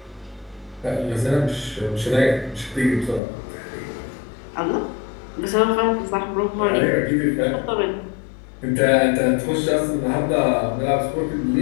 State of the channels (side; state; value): right; drops out; at 3.2 s